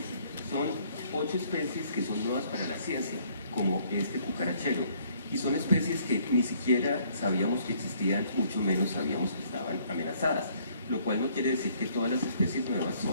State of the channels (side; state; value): both; inverted; correlation -0.63